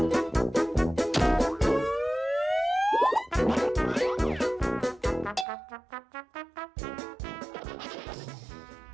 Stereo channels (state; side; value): drops out; left; at 5.5 s